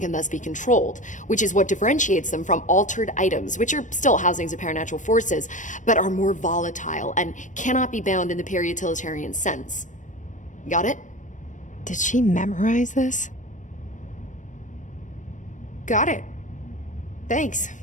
can thus be controlled, which is what differentiates them from altered items, which are still housings of paranatural forces, but are more volatile and cannot be bound in the peri-utilitarian sense. Got it? Did she memorize this? Got it. Thanks.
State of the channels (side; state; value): right; late; 0.37 ms